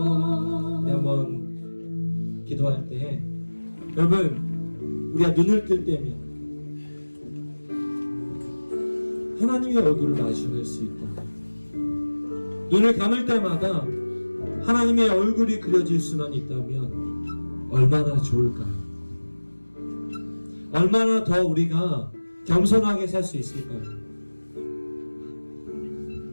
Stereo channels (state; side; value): inverted; both; correlation -1.00